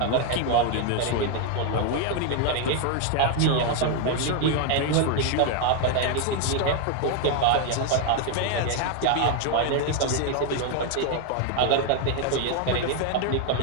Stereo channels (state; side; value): different; both; correlation 0.00